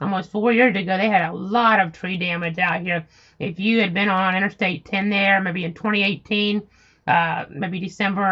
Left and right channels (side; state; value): both; identical; correlation 1.00